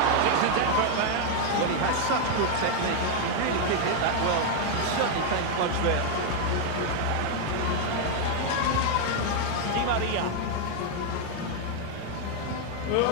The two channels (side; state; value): both; different; correlation 0.01